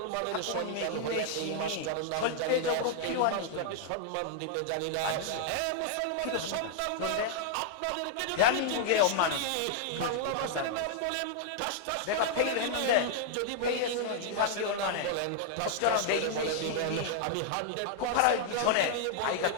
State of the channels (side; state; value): both; different; correlation -0.01